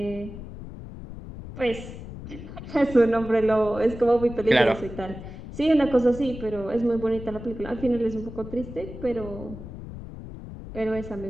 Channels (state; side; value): noise; left; rumble, 12 dB below the sound